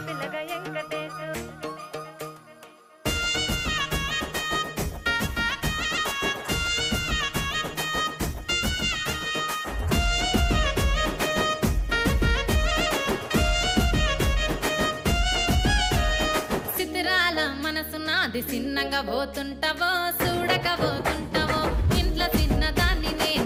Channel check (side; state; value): both; identical; correlation 1.00